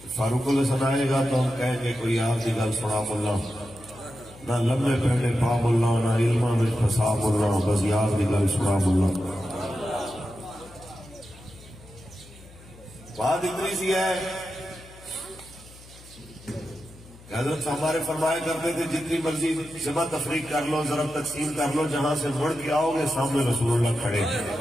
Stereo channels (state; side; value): noise; left; hum, 21 dB below the sound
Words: فاروق الحسن آئے گا تو ہم کہیں گے کوئی آپ کی گل سنا ملا نہ لمبے پہنے پا ملا نہ علمہ میں پھسا ملا بس یار کی گل سنا ملا. بات اتنی سی ہے کہ حضرت ہمارے فرمایا کرتے تھے جتنی مرضی جمع تفریق کر لو ضرب تقسیم کر لو جہاں سے مڑ کے آؤ گے سامنے رسول اللہ کھڑے ہیں.